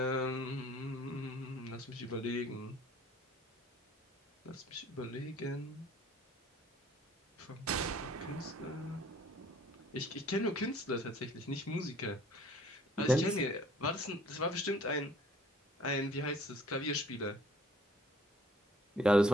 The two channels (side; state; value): both; normal; correlation 0.56